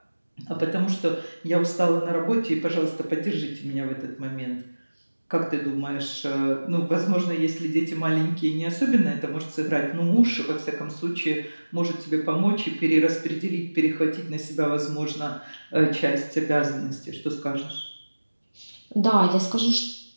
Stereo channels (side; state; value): both; inverted; correlation -1.00